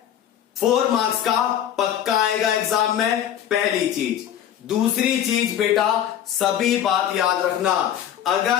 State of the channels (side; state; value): right; quieter; 10.4 dB